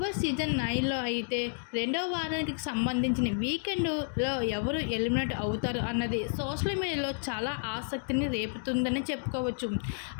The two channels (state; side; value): silent; right; 57 dB below the other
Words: బాస్ సీజన్ 9లో అయితే రెండవ వారానికి సంబంధించిన వీకెండ్లో ఎవరు ఎలిమినేట్ అవుతారు అన్నది సోషల్ మీడియాలో చాలా ఆసక్తిని రేపుతుందని చెప్పుకోవచ్చు.